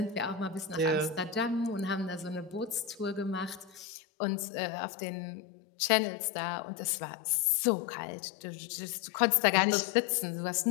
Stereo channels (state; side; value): drops out; right; at 3.9 s